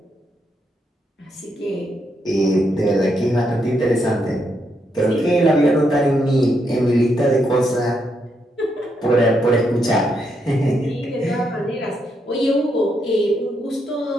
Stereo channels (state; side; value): normal; both; correlation 0.79